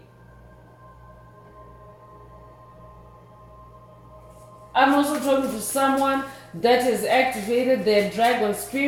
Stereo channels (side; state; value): both; identical; correlation 1.00